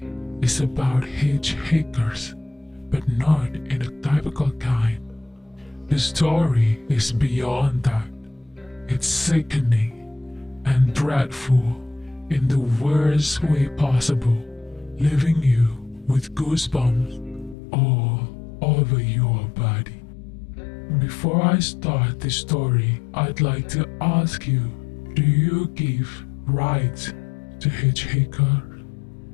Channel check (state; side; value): drops out; right; at 17.6 s